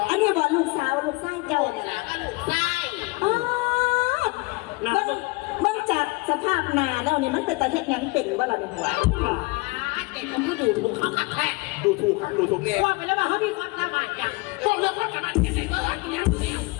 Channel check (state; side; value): quieter; right; 25.5 dB